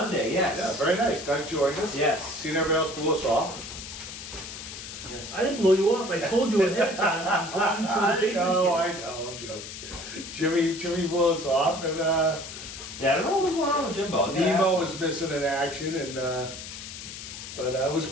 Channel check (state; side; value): noise; left; hiss, 11 dB below the sound